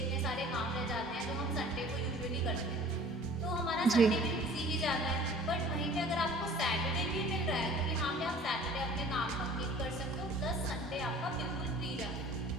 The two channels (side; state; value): both; normal; correlation 0.48